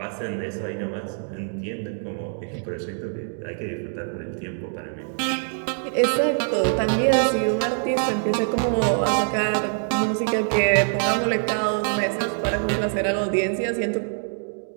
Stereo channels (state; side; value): silent; left; 62 dB below the other